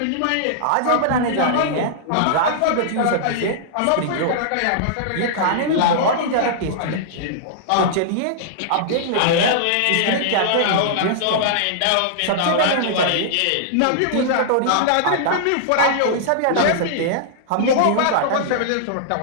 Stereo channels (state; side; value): different; both; correlation -0.02